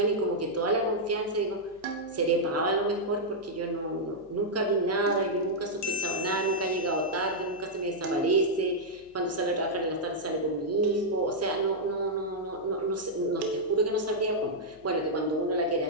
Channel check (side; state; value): left; noise; hum, 28 dB below the sound